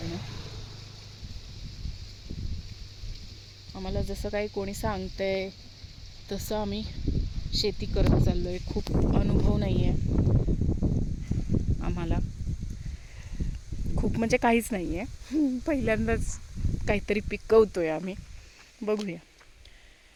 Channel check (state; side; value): identical; both; correlation 1.00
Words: आम्हाला जसं काही कोणी सांगतंय तसं आम्ही शेती करत चाललोय. खूप अनुभव नाही आहे आम्हाला, खूप म्हणजे काहीच नाही आहे. पहिल्यांदाच काहीतरी पिकवतोय आम्ही. बघूया